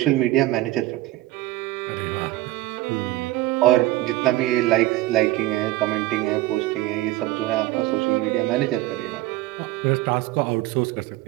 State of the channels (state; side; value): quieter; left; 17.0 dB